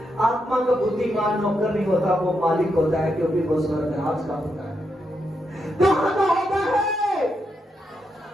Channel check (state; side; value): normal; both; correlation 0.82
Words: आत्मा का बुद्धिमान नौकर नहीं होता, वो मालिक होता है, क्योंकि वो स्वर्गराज का होता है। कहां का होता है?